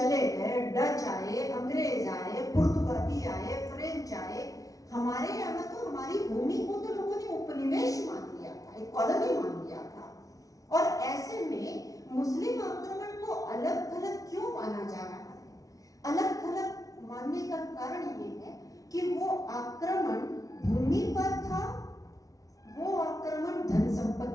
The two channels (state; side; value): late; right; 0.17 ms